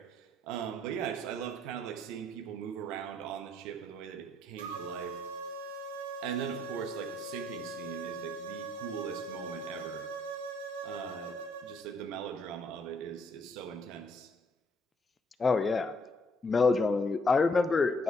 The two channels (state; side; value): normal; both; correlation 0.68